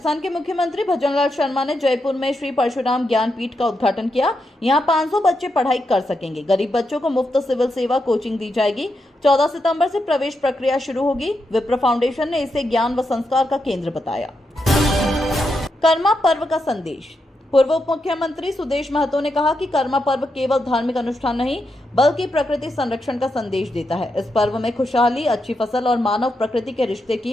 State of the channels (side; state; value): both; normal; correlation 0.84